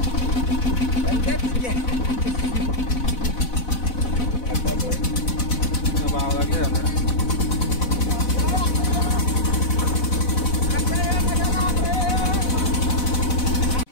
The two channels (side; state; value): right; late; 4.0 ms